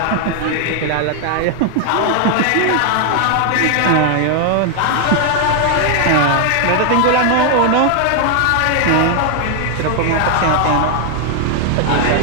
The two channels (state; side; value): different; both; correlation 0.00